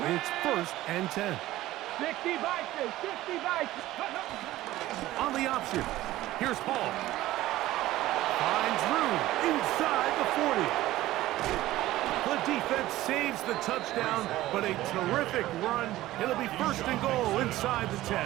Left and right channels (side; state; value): left; quieter; 15.9 dB